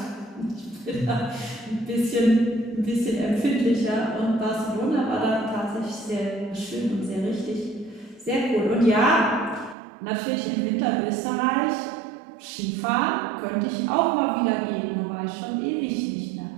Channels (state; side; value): drops out; left; at 9.8 s